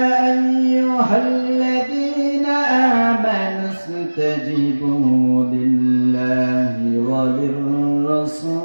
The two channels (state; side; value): inverted; both; correlation -1.00